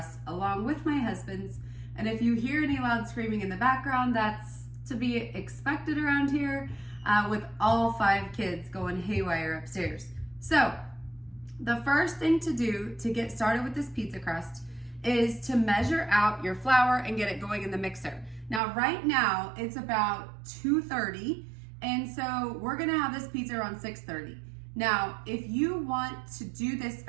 along with my husband's. And if you hear any loud screaming in the background, that's to be expected around here with all 5 kids going haywire upstairs. So the first thing to do to get started with this pizza crust is to measure out your flour and get it going in the mixer. Now, right now it's about 2:30, and so we're gonna have this pizza around 6:30. Now, if you want to do this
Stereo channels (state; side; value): drops out; left; at 18.6 s